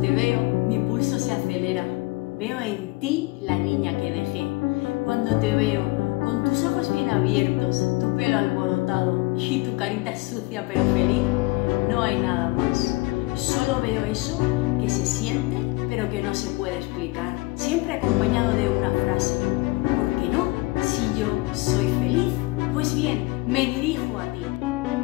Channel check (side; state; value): right; quieter; 22.4 dB